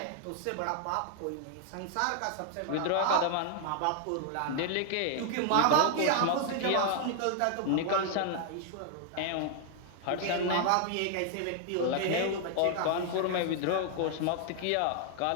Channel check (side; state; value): both; different; correlation 0.00